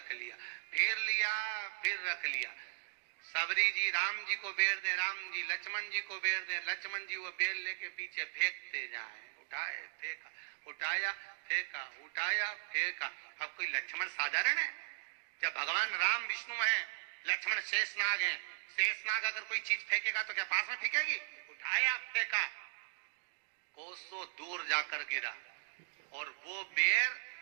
लिया, फिर लिया, फिर रख लिया। शबरी जी राम जी को बेर दे, राम जी लक्ष्मण जी को बेर दे, लक्ष्मण जी वो बेर लेके पीछे फेंकते जाए। उठाए फेंका, उठाया फेंका, उठाया फेंका। अब कोई लक्ष्मण साधारण है? जब भगवान राम विष्णु हैं, लक्ष्मण शेषनाग हैं। शेषनाग अगर कोई चीज फेंकेगा तो क्या पास में फेंकेगी? उठाया फेंका, कोसों दूर जाकर गिरा। और वो बेर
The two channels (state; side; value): silent; left; digital silence